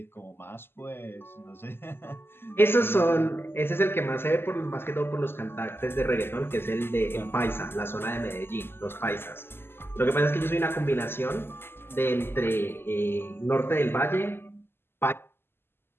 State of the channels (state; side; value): late; right; 0.11 ms